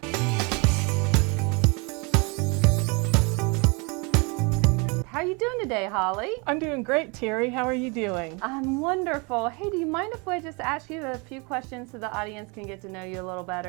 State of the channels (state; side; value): quieter; left; 30.5 dB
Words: How are you doing today, Holly? I'm doing great, Terry. How are you doing? I'm wonderful. Hey, do you mind if I just ask you a few questions so the audience can get to know you a little